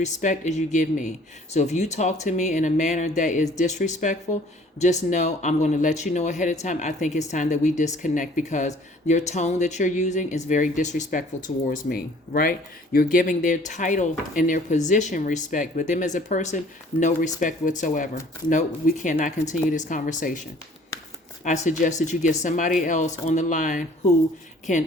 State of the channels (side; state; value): both; normal; correlation 0.54